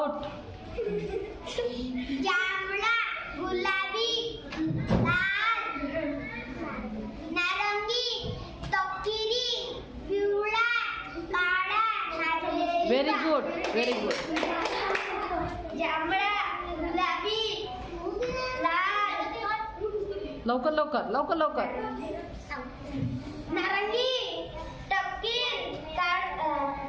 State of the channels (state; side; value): identical; both; correlation 1.00